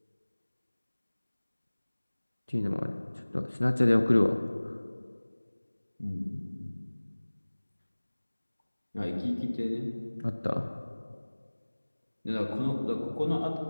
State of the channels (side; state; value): both; inverted; correlation -1.00